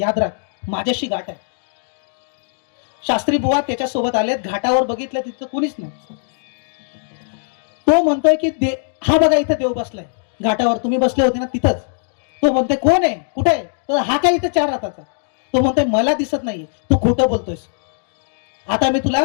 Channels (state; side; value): silent; right; digital silence